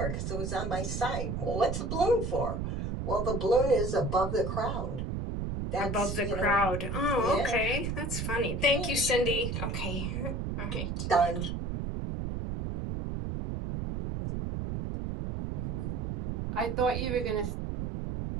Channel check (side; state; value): right; noise; rumble, 3 dB below the sound